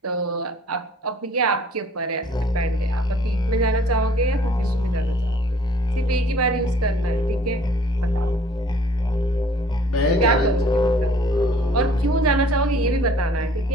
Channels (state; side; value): normal; both; correlation 0.55